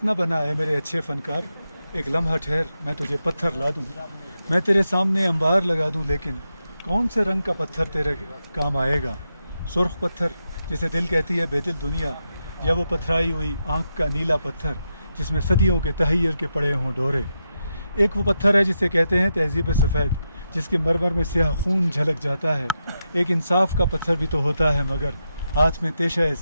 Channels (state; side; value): inverted; both; correlation -0.86